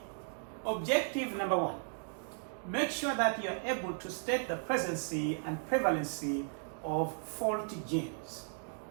Objective number 1, make sure that you're able to state the presence and prevalency of faulty genes.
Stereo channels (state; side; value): silent; left; 54 dB below the other